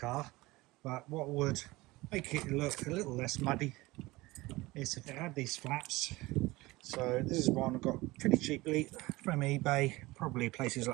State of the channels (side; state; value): left; quieter; 20.7 dB